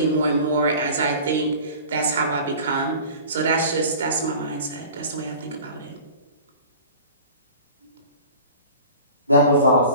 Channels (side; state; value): both; inverted; correlation -0.41